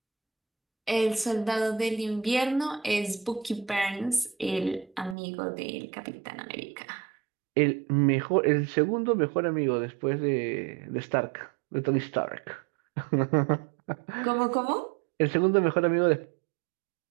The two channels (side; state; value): left; drops out; at 5.2 s